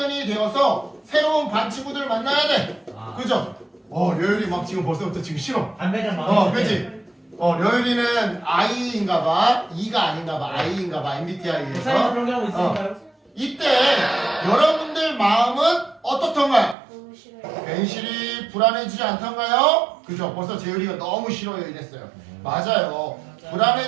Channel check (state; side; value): drops out; left; at 16.8 s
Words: 되어서 새로운 반 친구들 만나야 돼. 그죠? 려율이 막 지금 벌써부터 지금 싫어. 담배장 마음에 그치? 려율이는 I인가봐. E가 아닌가봐. I인가봐. MBTI에서. 그런 경우 있으니까요? 이때 여러분들 마음은 어떻던가요? 너무 싫어요. 괜시리 불안해지지 않던가요? 그죠? 벌써 재율이가 너무 싫어요 이랬어요. 맞아요.